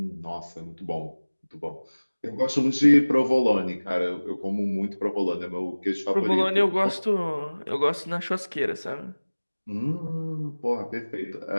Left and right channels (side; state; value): both; inverted; correlation -1.00